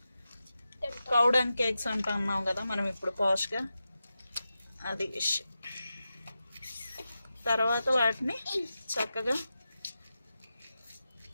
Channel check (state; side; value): inverted; both; correlation -0.91